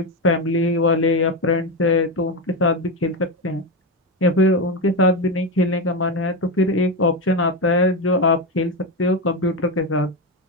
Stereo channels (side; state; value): both; normal; correlation 0.13